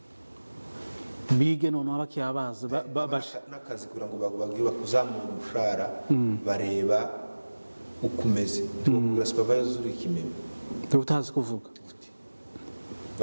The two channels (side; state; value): both; inverted; correlation -1.00